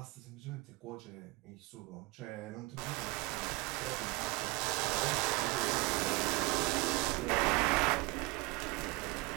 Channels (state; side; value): quieter; left; 24.8 dB